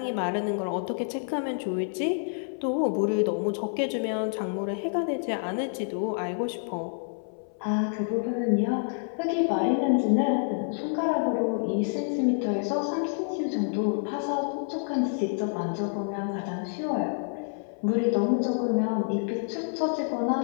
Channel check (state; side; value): silent; right; 59 dB below the other